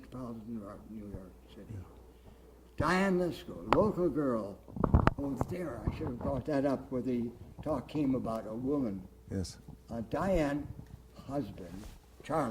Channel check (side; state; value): both; identical; correlation 1.00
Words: Art in New York City. Yeah. Diane Lesko, local girl. Oh, there, I should have brought that up where the talk came about a woman. Yes. Diane's husband,